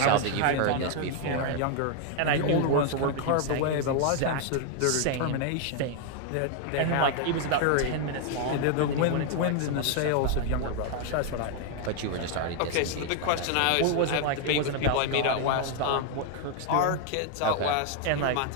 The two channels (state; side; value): different; both; correlation 0.00